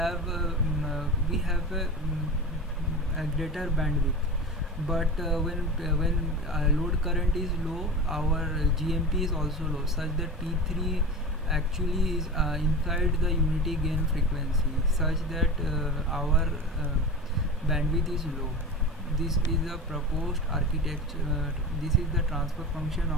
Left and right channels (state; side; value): normal; both; correlation 0.29